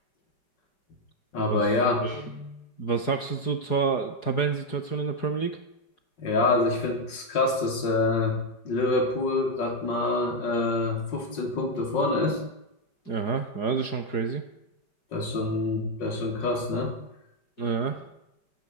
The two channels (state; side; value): late; right; 5.5 ms